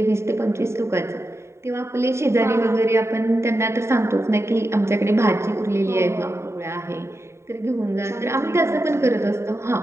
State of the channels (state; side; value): late; left; 0.13 ms